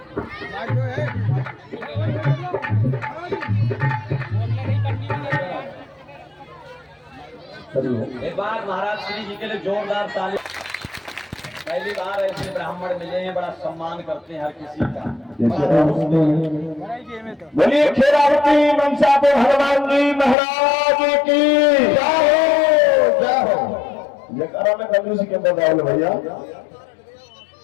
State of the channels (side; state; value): right; drops out; at 20.4 s